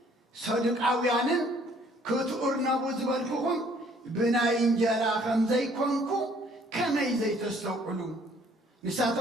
صدقاويان كتورنا بزبالكم بناي انجرا خمزي كونكو كمي زي تستوقلون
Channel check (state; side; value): normal; both; correlation 0.60